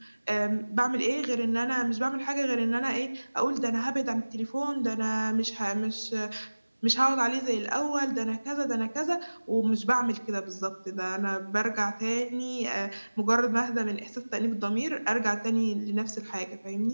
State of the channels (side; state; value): both; inverted; correlation -1.00